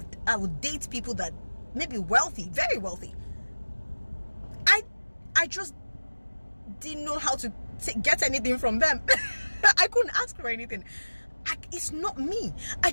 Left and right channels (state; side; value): inverted; both; correlation -1.00